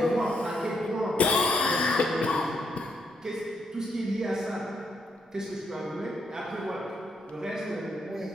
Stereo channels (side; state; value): both; normal; correlation 0.76